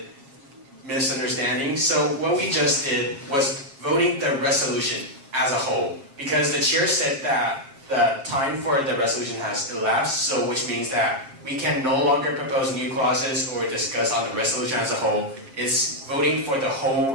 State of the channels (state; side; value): late; left; 7.4 ms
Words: misunderstanding. So what we just did was voting the resolution as a whole, because the chair said that the time for the resolution has elapsed, so which means that we can no longer propose new clauses or discuss on the resolution as a whole. It's voting for the whole